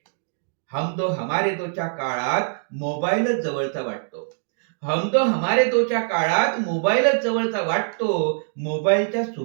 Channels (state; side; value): silent; left; digital silence